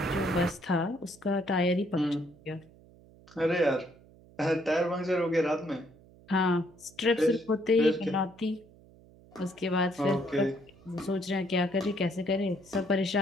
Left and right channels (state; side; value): noise; right; hum, 25 dB below the sound